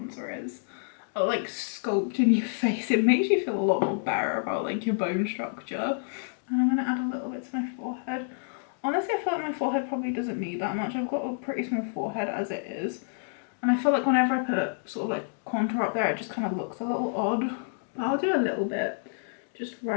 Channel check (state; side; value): silent; right; digital silence